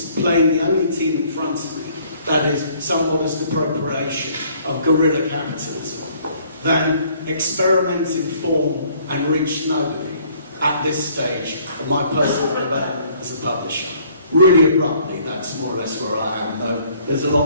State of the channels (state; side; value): inverted; both; correlation -0.60